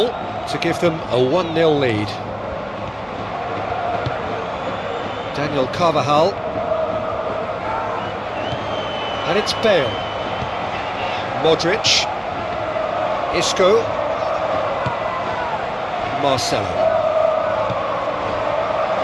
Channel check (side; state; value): both; identical; correlation 1.00